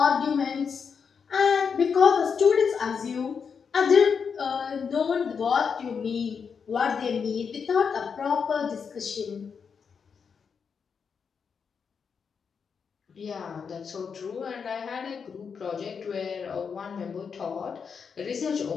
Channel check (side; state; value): right; quieter; 6.2 dB